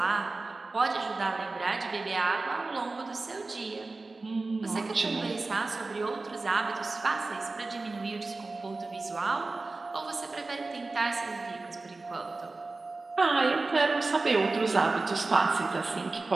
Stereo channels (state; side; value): quieter; left; 3.5 dB